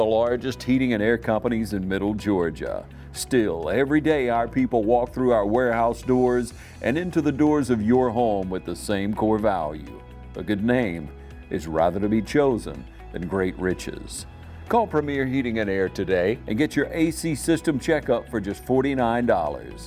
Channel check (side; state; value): both; identical; correlation 1.00